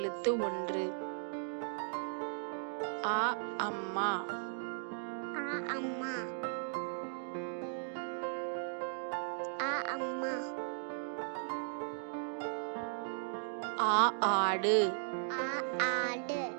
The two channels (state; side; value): silent; left; digital silence